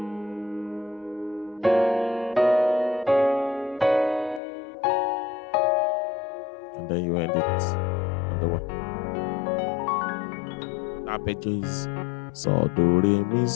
and then you end it on the 1. Arpeggio is so do re mi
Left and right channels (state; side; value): drops out; right; at 4.4 s